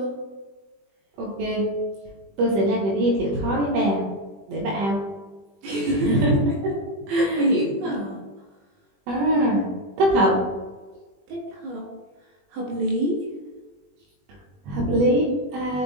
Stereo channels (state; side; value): late; left; 20 ms